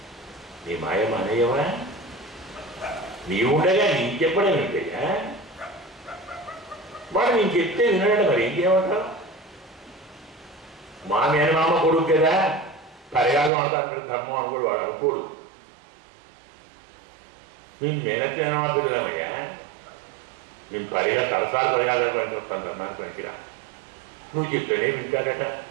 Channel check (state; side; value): drops out; left; at 13.5 s